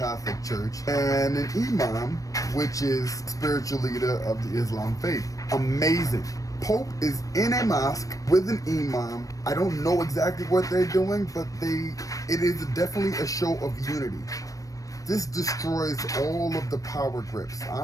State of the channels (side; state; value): right; late; 0.16 ms